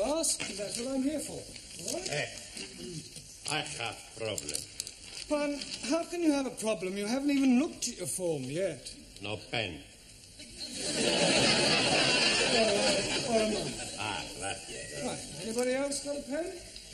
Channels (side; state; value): both; identical; correlation 1.00